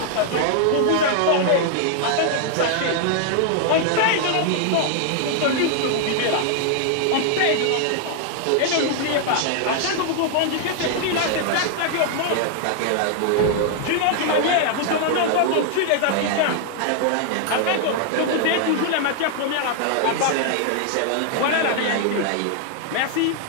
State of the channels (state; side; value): different; both; correlation 0.00